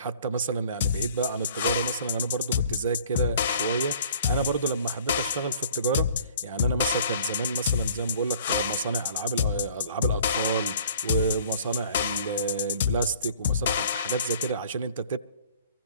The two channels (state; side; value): inverted; both; correlation -0.52